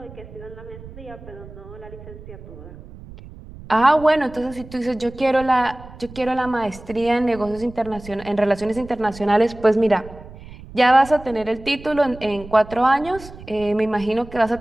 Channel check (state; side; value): noise; right; rumble, 17 dB below the sound